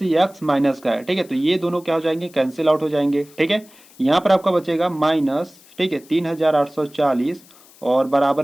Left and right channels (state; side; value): noise; left; hiss, 25 dB below the sound